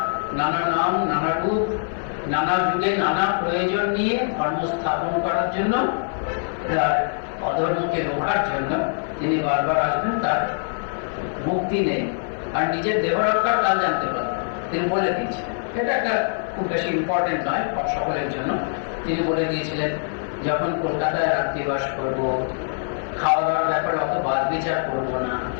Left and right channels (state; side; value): silent; right; 56 dB below the other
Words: নানা নাম, নানা রূপ, নানা যুগে নানা প্রয়োজন নিয়ে ধর্ম স্থাপন করার জন্য, অধর্মকে রোখার জন্য তিনি বারবার আসবেন। তার মুক্তি নেই, আর নিজের দেহ রক্ষার কাল জানতে পারবেন, তিনি বলে দিয়েছিলেন। এটা একটা খুব বেশি ইম্পর্টেন্ট নয় সকলের জন্য। তিনি বলে দিয়েছিলেন, যখন কলকাতায় রাত্রিবাস করবো, খাওয়া দাওয়ার ব্যাপারে অত বাদ বিচার করবো না,